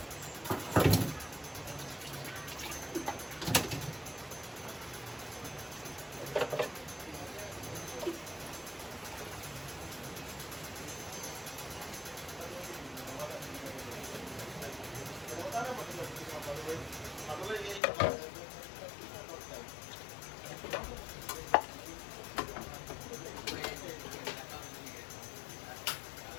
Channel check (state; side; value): drops out; right; at 17.8 s